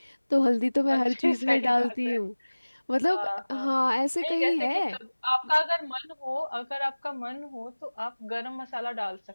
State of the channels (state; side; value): inverted; both; correlation -1.00